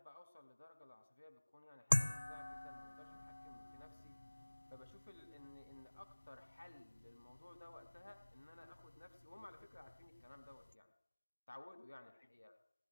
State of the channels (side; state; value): both; inverted; correlation -1.00